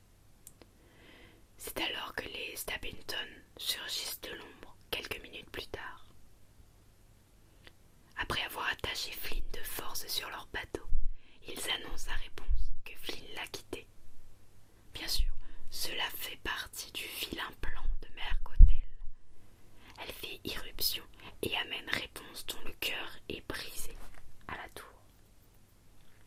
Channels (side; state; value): both; identical; correlation 1.00